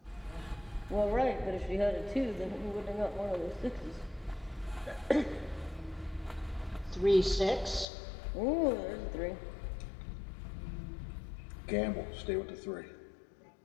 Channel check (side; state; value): right; drops out; at 7.9 s